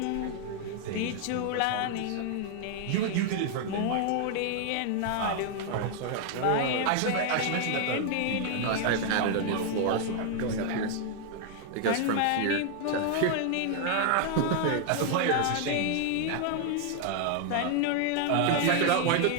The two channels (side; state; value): both; different; correlation 0.00